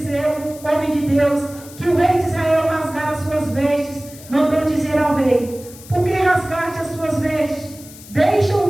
homem de Deus, que o rei de Israel rasgara as suas vestes, mandou dizer ao rei: por que rasgaste as suas vestes?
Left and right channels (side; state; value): left; noise; hiss, 19 dB below the sound